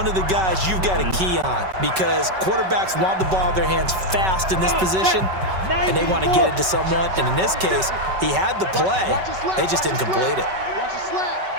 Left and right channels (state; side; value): late; left; 5.3 ms